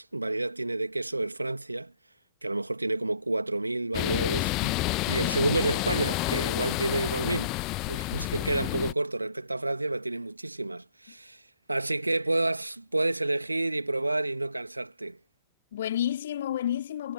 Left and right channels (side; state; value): both; inverted; correlation -0.66